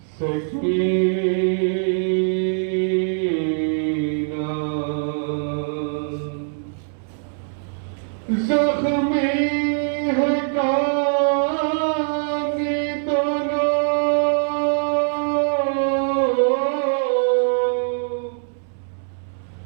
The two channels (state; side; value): silent; left; 64 dB below the other